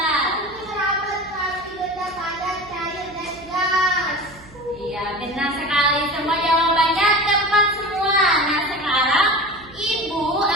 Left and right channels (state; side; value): noise; right; hum, 22 dB below the sound